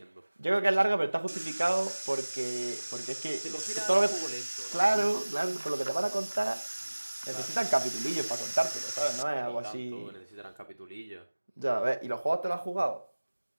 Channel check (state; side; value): inverted; both; correlation -1.00